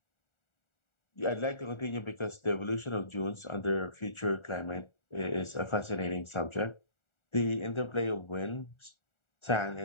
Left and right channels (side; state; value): right; late; 1.4 ms